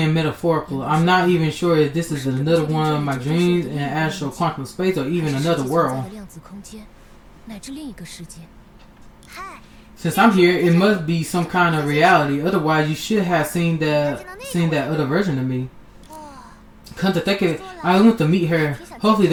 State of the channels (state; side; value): identical; both; correlation 1.00